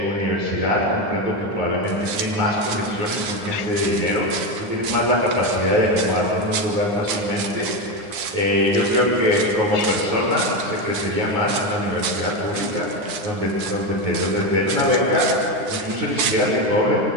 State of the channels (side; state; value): left; late; 9.7 ms